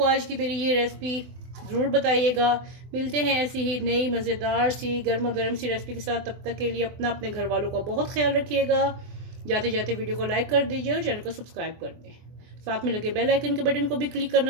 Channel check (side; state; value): left; late; 24 ms